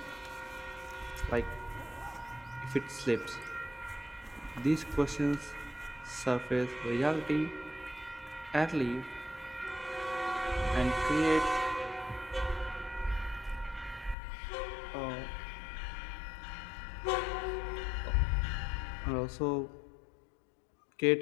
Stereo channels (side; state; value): right; drops out; at 14.2 s